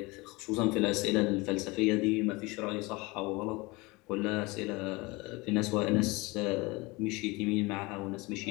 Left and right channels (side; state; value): right; quieter; 24.1 dB